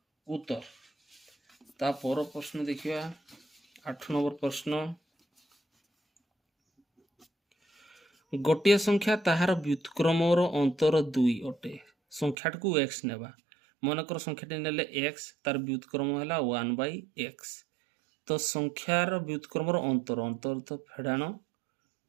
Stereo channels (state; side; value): drops out; left; at 12.4 s